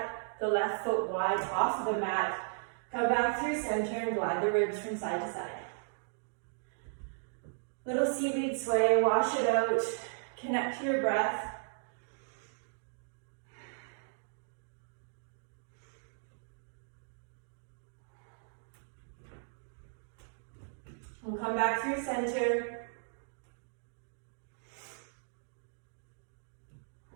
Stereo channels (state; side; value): silent; left; digital silence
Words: the left foot wide off of the mat. Come back through center and glide the ribs from side to side. Little seaweed sway, wash it out, connect to your breath. We'll come back through center.